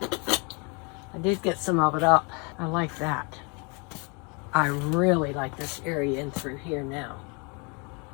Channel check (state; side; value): quieter; right; 32.6 dB